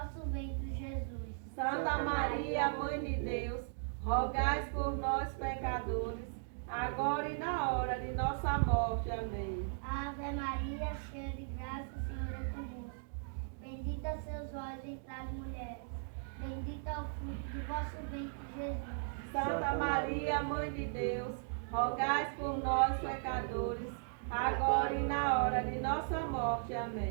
ventre, Jesus. Santa Maria, Mãe de Deus, rogai por nós, pecadores, agora e na hora de nossa morte. Amém. Ave Maria, cheia de graça, o Senhor é convosco. Bendita sois vós entre as mulheres. Bendito é o fruto do vosso ventre, Jesus. Santa Maria, Mãe de Deus, rogai por nós, pecadores, agora e na hora de nossa morte.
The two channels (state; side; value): silent; left; digital silence